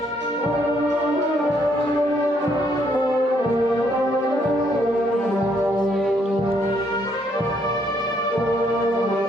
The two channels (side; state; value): both; normal; correlation 0.71